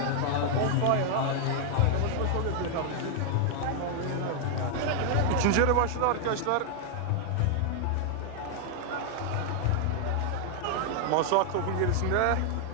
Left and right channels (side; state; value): both; different; correlation 0.00